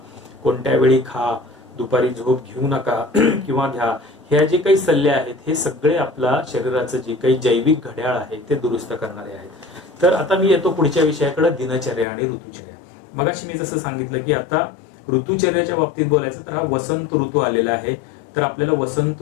कोणत्या वेळी खा, दुपारी झोप घेऊ नका किंवा घ्या, ह्या जे काही सल्ले आहेत हे सगळे आपला शरीराचं जे काही जैविक घड्याळ आहे ते दुरुस्त करणारे आहेत. तर आता मी येतो पुढच्या विषयाकडे, दिनचर्या आणि ऋतुचर्या. मगाशी मी जसं सांगितलं की आता ऋतुचर्याच्या बाबतीत बोलायचं तर हा वसंत ऋतू आलेला आहे. तर आपल्याला वसंत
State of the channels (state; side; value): drops out; right; at 12.1 s